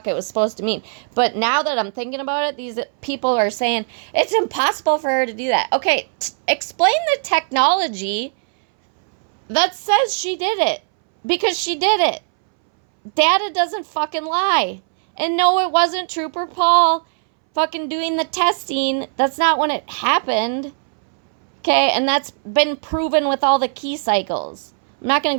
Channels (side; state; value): left; silent; 64 dB below the other